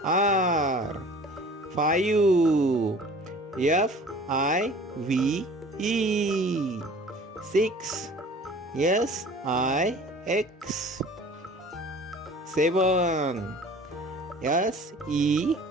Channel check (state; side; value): normal; both; correlation 0.46